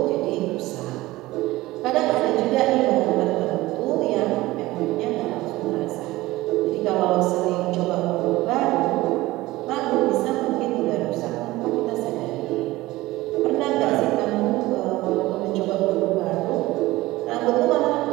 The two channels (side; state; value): left; quieter; 18.5 dB